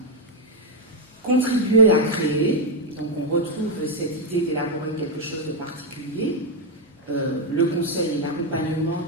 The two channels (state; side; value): normal; both; correlation 0.01